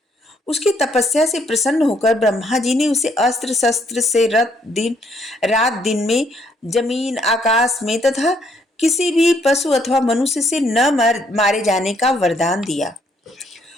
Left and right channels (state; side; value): normal; both; correlation 0.69